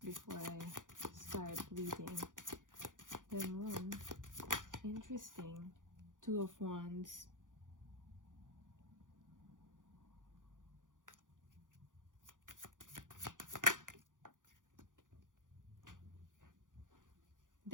before I start reading. The moon. Interesting. Two of Wands.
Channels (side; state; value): left; late; 0.88 ms